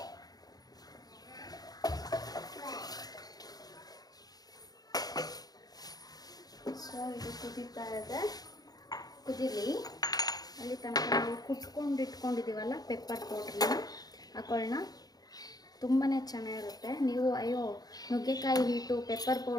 ಸೊ ಇದು ಕುದೀತಾ ಇದೆ, ಕುದೀಲಿ. ಅಲ್ಲಿ ತನಕ ನಾವು ಕುಟ್ಕೊಂಡು ಇಟ್ಕೊಂಡಿದ್ದೀವಲ್ಲ ಪೆಪ್ಪರ್ ಪೌಡ್ರನ್ನ ಹಾಕೊಳ್ಳೋಣ. ತುಂಬಾ ಚೆನ್ನಾಗಿರುತ್ತೆ. ನೀವು ಅಯ್ಯೋ ನುಗ್ಗೆಕಾಯಿ ಹೀಟು, ಪೆಪ್ಪರ್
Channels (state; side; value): late; right; 0.19 ms